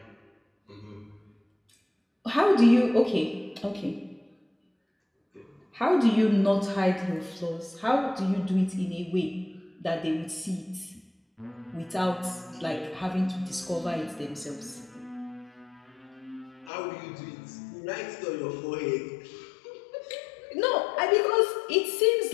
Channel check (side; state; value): right; drops out; at 16.7 s